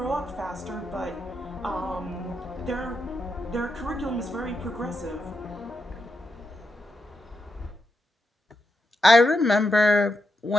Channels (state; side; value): normal; both; correlation 0.84